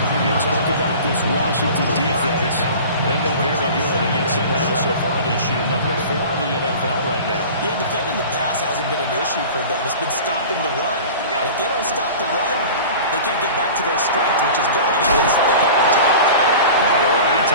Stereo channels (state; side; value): inverted; both; correlation -0.38